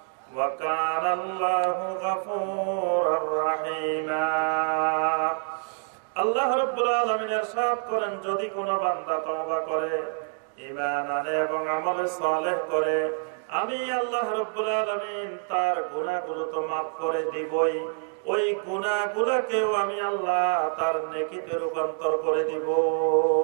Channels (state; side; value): silent; left; 55 dB below the other